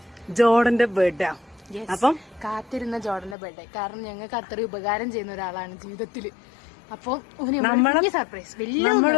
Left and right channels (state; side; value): drops out; right; at 3.4 s